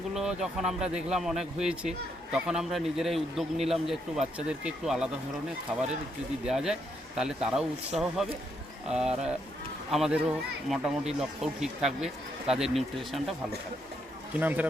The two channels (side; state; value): both; normal; correlation 0.77